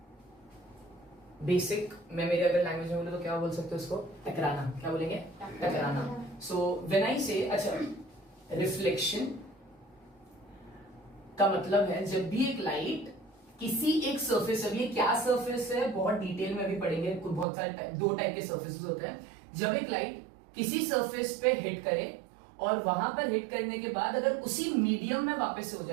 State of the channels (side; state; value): left; drops out; at 17.4 s